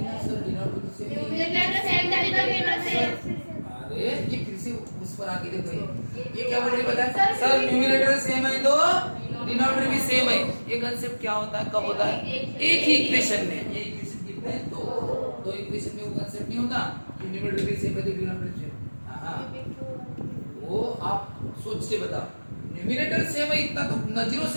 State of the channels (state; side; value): inverted; both; correlation -1.00